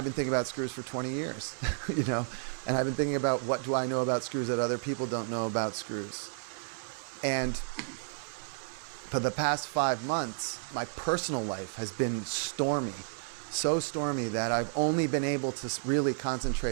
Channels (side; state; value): left; silent; digital silence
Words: been thinking about screws for 20 years, you know, and I've been thinking about what do I know about screws that other people don't know about screws. And for the past 5 months, my personal life has been stormy, so stormy that I've only been able to really